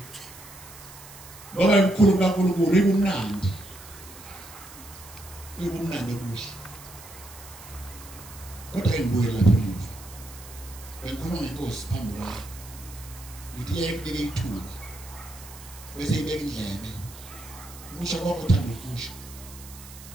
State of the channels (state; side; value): noise; right; hiss, 17 dB below the sound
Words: Ngoba imkhulu kaNkulunkulu ibumnandi. Ibumnandi okuhle. Kodwa imbuye lapha emuva. Bengikhuluma ngenkosi phambi kwami. Ngithi yayibeke ithuba. Bese ibeka indlebe. Ukusho konke uthanda ukusho.